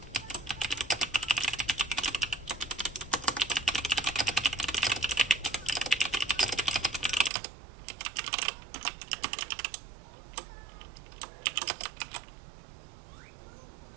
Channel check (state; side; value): drops out; left; at 7.3 s